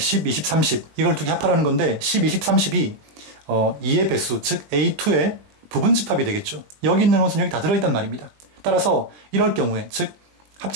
20, 30 이걸 두 개 합하라는 건데 10, 20, 30이 2의 배수, 즉 A2의 부분집합이 되겠죠. 여기 있는 원소는 여기 다 들어있단 말입니다. 따라서 이럴 경우에, 즉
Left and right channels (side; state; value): left; late; 20 ms